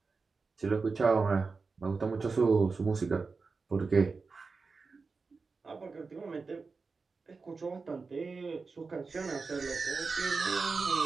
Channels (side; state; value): left; quieter; 4.4 dB